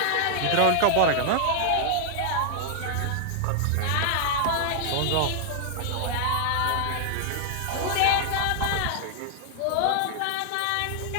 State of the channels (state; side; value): different; both; correlation 0.00